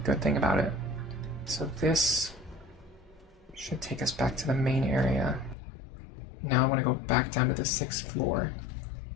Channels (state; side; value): drops out; right; at 5.6 s